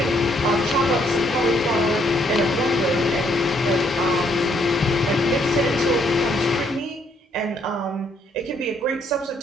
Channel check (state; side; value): normal; both; correlation 0.69